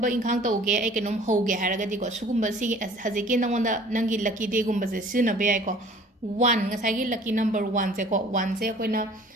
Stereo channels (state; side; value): normal; both; correlation 0.50